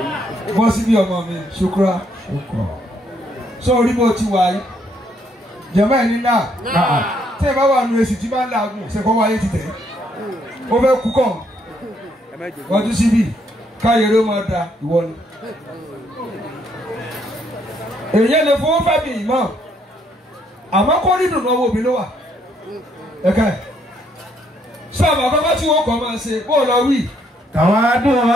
bọ́ sí bí ọmọ mi ṣukura sọ orí bó ti wà yìí jẹ̀mọ́ ẹ̀ ní náà tí ẹ bá wà nù èsì tí bá ń làágùn ṣẹ̀kọ́ wáyé ti tẹ̀ ó fẹ́ kú kàn wọ́n tún síbí káyọ̀rọ̀ máa da ìwọ ni. èyí lè fowó fẹ́ mi ìmọ̀ àmọ́ kó rí dùnú owó mi ló wà ẹ̀ka ẹ̀ sábà àkọ́kọ́ tí wọ́n kọ́ máa ṣe bó lọ wí.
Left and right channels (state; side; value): normal; both; correlation 0.70